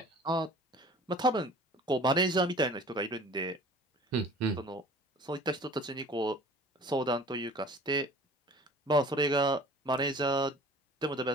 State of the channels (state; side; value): normal; both; correlation 0.46